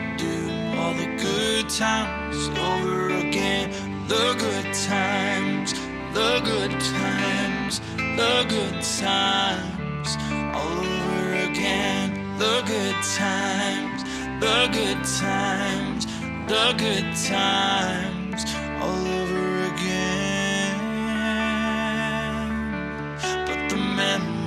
do all the good times over again. The good times, the good times, the good times, all over again. The good times, the good times, the good times, all over again. But the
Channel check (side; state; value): both; identical; correlation 1.00